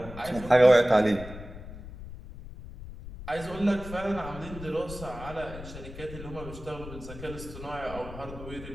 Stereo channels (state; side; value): noise; left; rumble, 13 dB below the sound